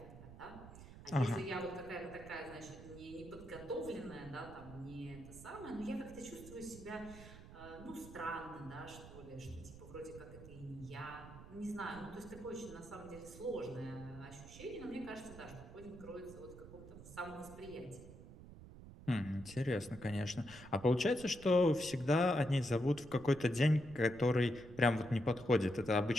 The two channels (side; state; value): right; noise; rumble, 15 dB below the sound